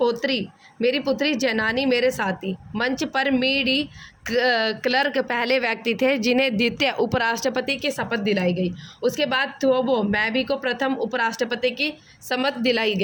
पुत्री जैनानी मेरे साथी। मंच पर मीडी क्लर्क पहले व्यक्ति थे जिन्हें द्वितीय उपराष्ट्रपति की शपथ दिलाई गई। उसके बाद थोबो मैबी को प्रथम उपराष्ट्रपति की शपथ दिलाई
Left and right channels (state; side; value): identical; both; correlation 1.00